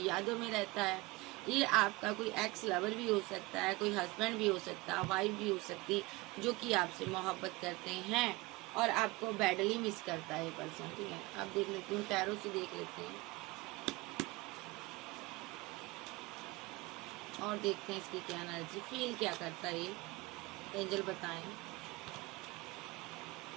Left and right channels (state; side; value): quieter; left; 22.4 dB